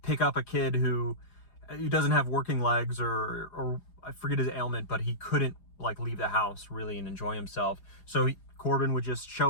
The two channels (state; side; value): late; right; 4.9 ms